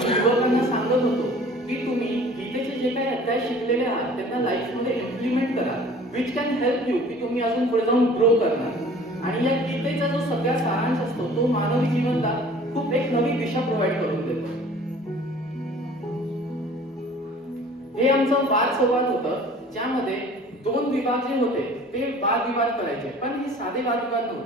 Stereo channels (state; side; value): normal; both; correlation 0.48